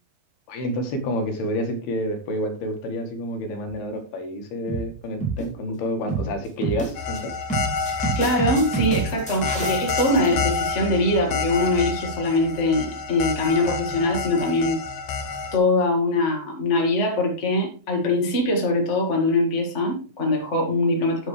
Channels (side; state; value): both; normal; correlation -0.13